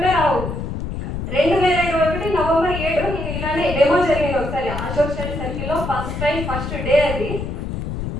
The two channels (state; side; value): noise; left; rumble, 5 dB below the sound